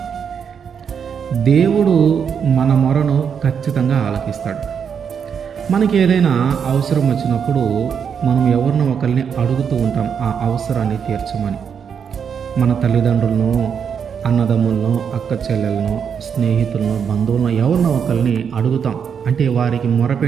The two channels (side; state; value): left; quieter; 7.2 dB